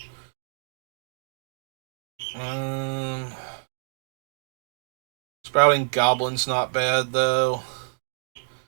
Sprouting Goblin's not bad, though.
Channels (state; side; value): silent; left; digital silence